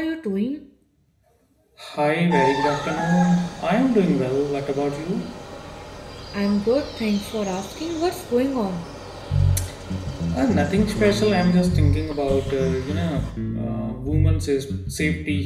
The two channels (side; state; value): both; identical; correlation 1.00